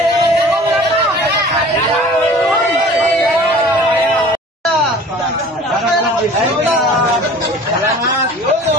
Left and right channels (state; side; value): normal; both; correlation 0.45